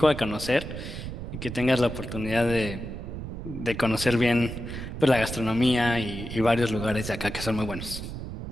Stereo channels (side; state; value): right; noise; rumble, 7 dB below the sound